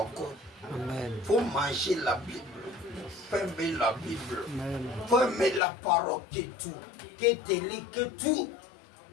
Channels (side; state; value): right; drops out; at 5.6 s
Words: encore. Il faut manger la Bible. Il faut aimer la Bible. Il faut aimer la parole que tout. Que télé, que tout.